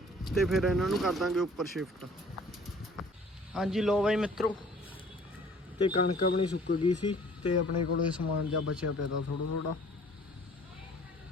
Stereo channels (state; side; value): normal; both; correlation 0.53